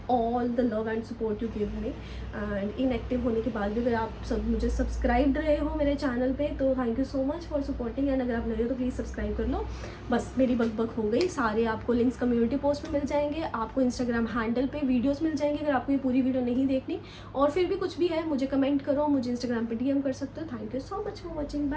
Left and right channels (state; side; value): identical; both; correlation 1.00